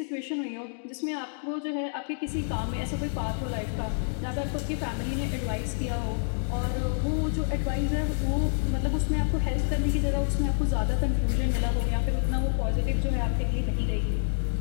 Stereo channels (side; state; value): right; silent; 59 dB below the other